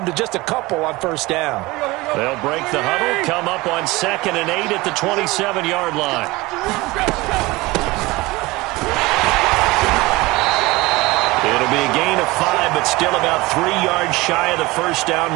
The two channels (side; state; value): left; quieter; 21.4 dB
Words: to just a couple on first down. They'll break the huddle, come up on 2nd and 8 at the 27-yard line. It'll be a gain of 5, but still about 3 yards shy of the first down